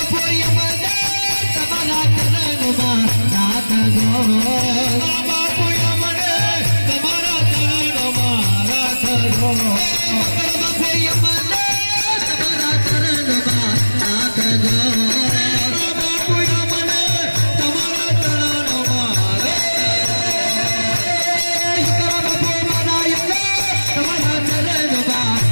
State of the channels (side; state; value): both; inverted; correlation -1.00